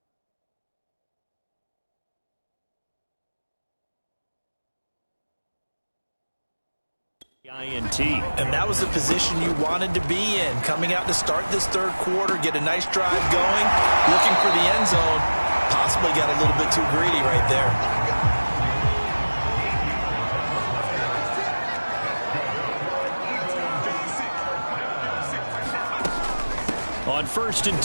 INT. And that was the position you wanted to be in. Coming out to start this third quarter, get a nice drive going, looking for the end zone. Possibly got a little bit too greedy right there. On 1st and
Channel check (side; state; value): both; inverted; correlation -1.00